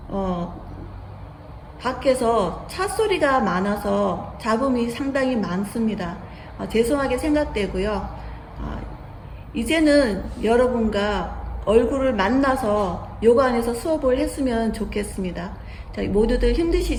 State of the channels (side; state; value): both; identical; correlation 1.00